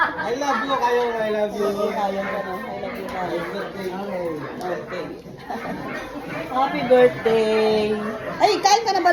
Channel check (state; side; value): identical; both; correlation 1.00